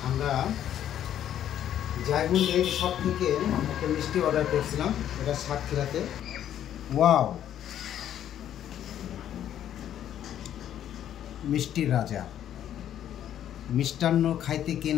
আমরা জায়গুন ডেইরি শপ থেকে একটা মিষ্টি অর্ডার করছিলাম, এটা সাতক্ষীরাতে। ওয়াও, মিষ্টির রাজা। মিষ্টান্ন খাইতে কে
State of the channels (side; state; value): right; quieter; 10.7 dB